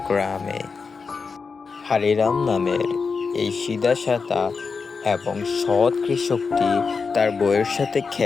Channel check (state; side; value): quieter; right; 5.0 dB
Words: গ্রামে হারিরাম নামের এই সিধাসাদা এবং সৎ কৃষকটি তার বউয়ের সাথে